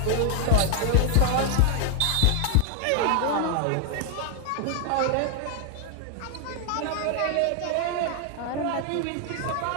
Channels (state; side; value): different; both; correlation 0.00